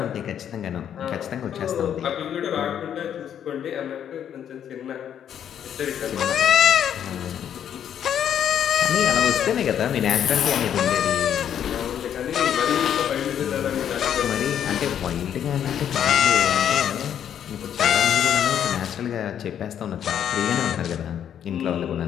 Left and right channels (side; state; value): right; quieter; 9.4 dB